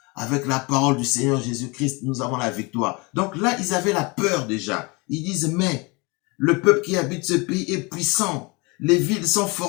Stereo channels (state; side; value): quieter; right; 27.5 dB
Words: Avec la parole du Seigneur Jésus-Christ, nous avons la victoire. Donc là, ils avaient la peur déjà. Ils disent, mais le peuple qui habite ce pays est puissant. Les villes sont